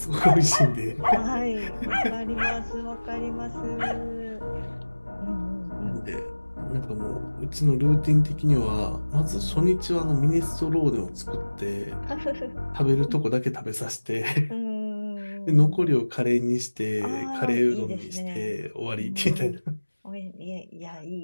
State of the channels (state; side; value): inverted; both; correlation -1.00